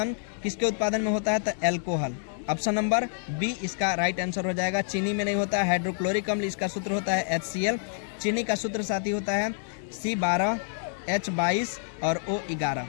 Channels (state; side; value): silent; right; 60 dB below the other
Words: किसके उत्पादन में होता है? तो एल्कोहल। ऑप्शन नंबर बी इसका राइट आंसर हो जाएगा। चीनी में नहीं होता है। हाइड्रोक्लोरिक अम्ल, इसका सूत्र होता है HCl। चीनी का सूत्र साथी होता है C12H22 और O11।